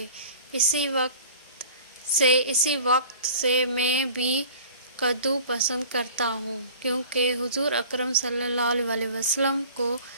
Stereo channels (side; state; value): both; inverted; correlation -0.45